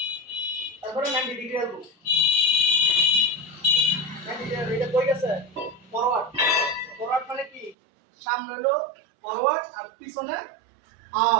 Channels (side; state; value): left; drops out; at 7.8 s